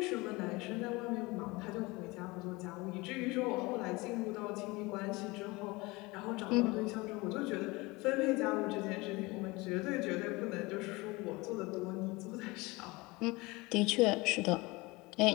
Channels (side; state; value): right; quieter; 23.4 dB